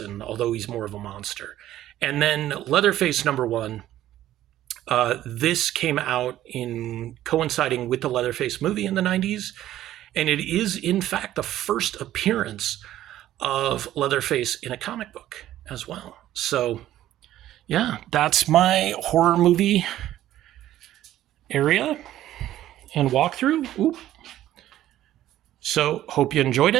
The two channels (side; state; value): left; quieter; 13.2 dB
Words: although he's more of a monster. And then Leatherface #1. This came out in coinciding with the Leatherface movie in the 90s. And it is, in fact, the first appearance of Leatherface in a comic book as well. So, yeah, that's my horror movie area and walkthrough. Oop. So, hope you enjoyed